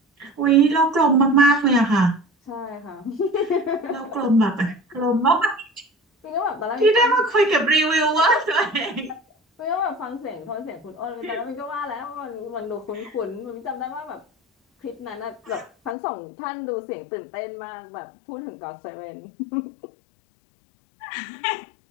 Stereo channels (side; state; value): right; drops out; at 16.0 s